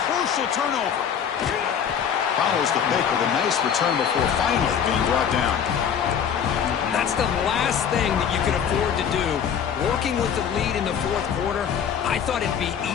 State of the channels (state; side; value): quieter; right; 8.0 dB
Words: crucial turnover. Follows the pick with a nice return before finally being brought down. That's the last thing that you can afford to do. Working with the lead in the fourth quarter, I thought it'd be